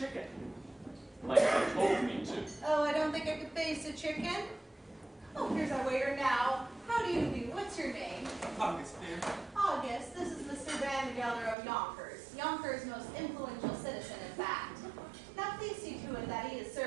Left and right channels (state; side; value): drops out; left; at 11.6 s